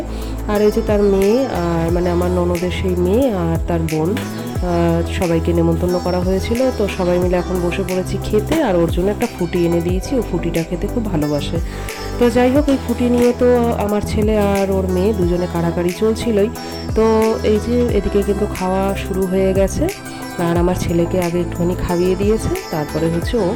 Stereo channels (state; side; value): identical; both; correlation 1.00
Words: আর এই যে তার মেয়ে, আর মানে আমার ননদের সেই মেয়ে আর তার বোন, সবাইকে নেমন্তন্ন করা হয়েছিল। তো সবাই মিলে এখন বসে পড়েছি খেতে, আর ওর জন্য একটা ফুটি এনে দিয়েছি, ও ফুটিটা খেতে খুব ভালোবাসে। তো যাই হোক, এই ফুটি নিয়ে তো আমার ছেলে আর ওর মেয়ে দুজনে কাড়াকাড়ি চলছিলই। তো এই যে এদিকে কিন্তু খাওয়া শুরু হয়ে গেছে, আর আমার ছেলেকে আগে একটুখানি খাইয়ে দিয়েছে, তারপরে হচ্ছে ও